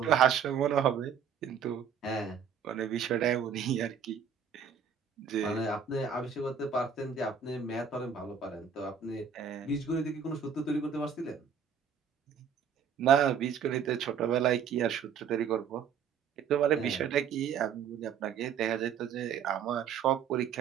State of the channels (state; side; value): quieter; left; 7.3 dB